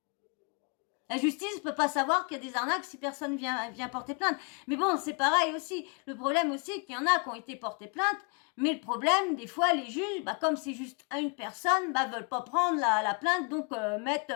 La justice ne peut pas savoir qu'il y a des arnaques si personne vient porter plainte. Mais bon, c'est pareil aussi. Le problème aussi, c'est qu'il y en a qui ont été portés plainte. Mais le problème, des fois, les juges, comme c'est juste une personne, veulent pas prendre la plainte, donc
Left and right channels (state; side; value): quieter; right; 36.5 dB